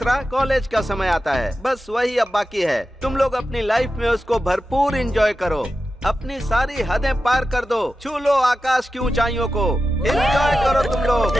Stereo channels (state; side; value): normal; both; correlation 0.92